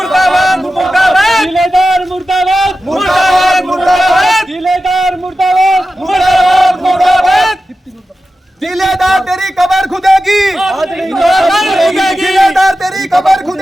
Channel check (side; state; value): both; normal; correlation 0.93